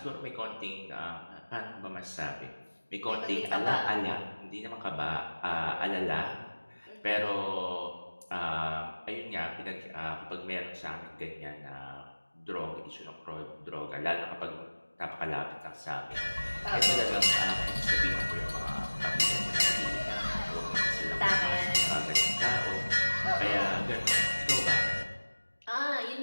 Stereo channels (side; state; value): both; inverted; correlation -1.00